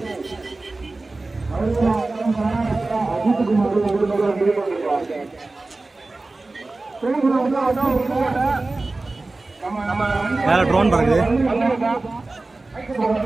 மேல ட்ரோன் பறக்குது.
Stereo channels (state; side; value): quieter; left; 3.2 dB